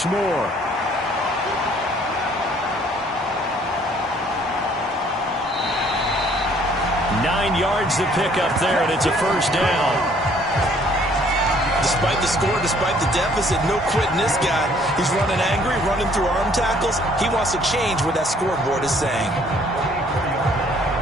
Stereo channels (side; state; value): both; normal; correlation 0.60